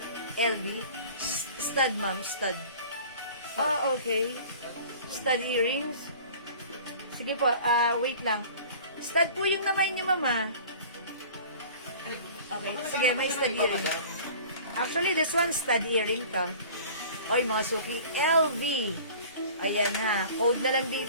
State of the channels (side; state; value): both; inverted; correlation -0.44